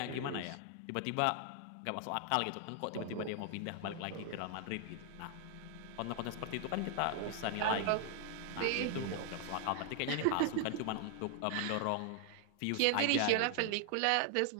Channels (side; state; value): both; different; correlation 0.00